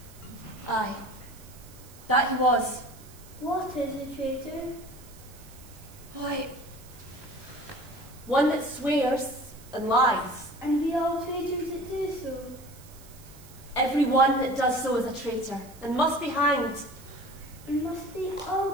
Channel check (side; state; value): right; noise; hiss, 22 dB below the sound